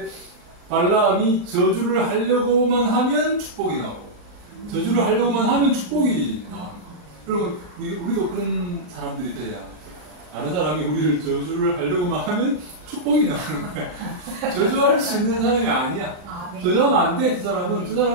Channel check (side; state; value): left; late; 40 ms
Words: 발람이 저주를 하려고만 하면 축복이 나오고, 저주를 하려고만 하면 축복이 나오는 거예요. 그리고 우리도 그런 사람들이 돼야 다른 사람이 우리를 저주를 하려고만 하면 축복이 나오는 거야. 저주할 수 있는 사람이 아니야. 네. 저주하면 안 돼. 저